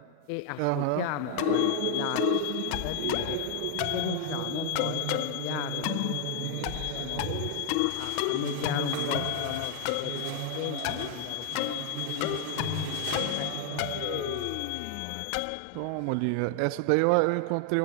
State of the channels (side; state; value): both; different; correlation 0.00